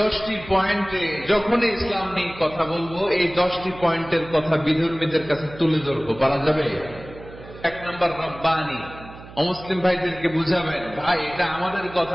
পয়েন্টে যখনই ইসলাম নিয়ে কথা বলবো, এই 10টি পয়েন্টের কথা বিধর্মীদের কাছে তুলে ধরবো। পারা যাবে? 1 নম্বর রব্বানি। অমুসলিম ভাইদেরকে বুঝাবেন, ভাই এটা আমাদের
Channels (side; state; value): right; noise; hum, 17 dB below the sound